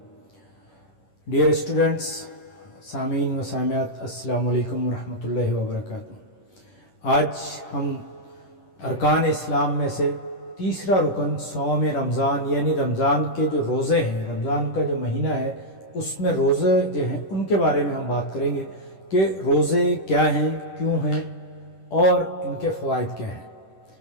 ڈیئر اسٹوڈنٹس، سامعین و سامعات، السلام علیکم ورحمۃ اللہ وبرکاتہ۔ آج ہم ارکان اسلام میں سے تیسرا رکن صوم رمضان یعنی رمضان کے جو روزے ہیں، رمضان کا جو مہینہ ہے اس میں روزے جو ہیں ان کے بارے میں ہم بات کریں گے کہ روزے کیا ہیں، کیوں ہیں اور ان کے فوائد کیا ہیں۔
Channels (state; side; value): late; right; 10 ms